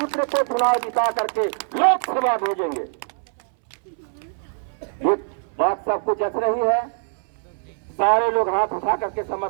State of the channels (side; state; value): left; silent; 63 dB below the other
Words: को चुनाव जिता करके लोकसभा भेजेंगे। ये बात सबको जच रही है? सारे लोग हाथ उठा करके